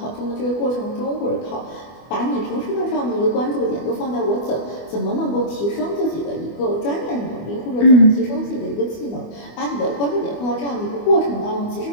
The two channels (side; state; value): right; late; 24 ms